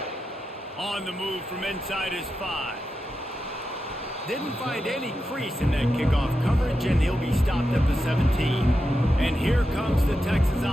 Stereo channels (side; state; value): both; normal; correlation 0.89